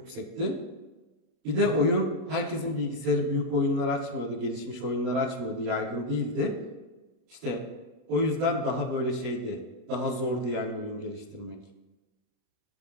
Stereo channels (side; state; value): left; late; 32 ms